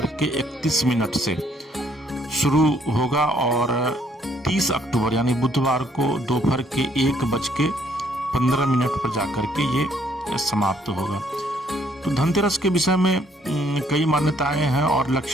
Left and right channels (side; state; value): both; normal; correlation 0.66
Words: से शुरू होगा और 30 अक्टूबर यानी बुधवार को दोपहर के 1:15 पर जाकर के ये समाप्त होगा। तो धनतेरस के विषय में कई मान्यताएं हैं, और